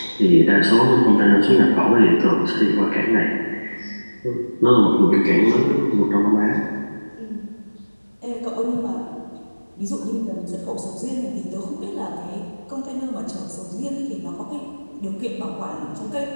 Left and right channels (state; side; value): inverted; both; correlation -1.00